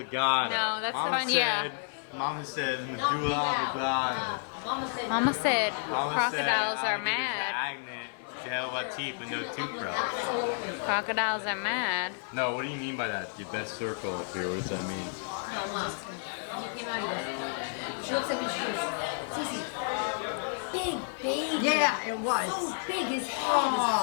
No, that's Mama fun, yeah. said, Mama said medulla oblongata. Mama said, Mama said Mama said crocodiles are alligators mad. stagnant. She had about teeth but no toothbrush. Crocodiles are mad. No, what do you mean by that? Your best circle up here. What does that mean? no, Mom. He came out, he goes, she looks at me, she goes, Cece, big baby. Yeah, it was. So big, his head is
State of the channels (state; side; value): silent; right; 57 dB below the other